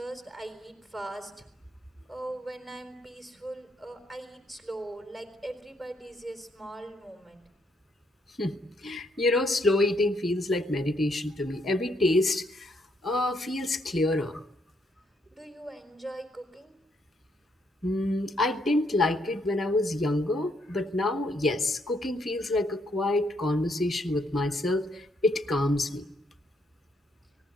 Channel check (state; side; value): normal; both; correlation 0.73